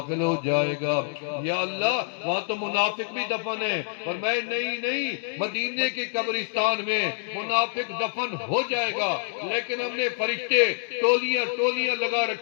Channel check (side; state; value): right; silent; digital silence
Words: ہو جائے گا۔ یا اللہ وہاں تو منافق بھی دفن ہے، فرمایا نہیں، مدینے کے قبرستان میں منافق دفن ہو جائے گا، لیکن ہم نے فرشتے ٹولیاں لگا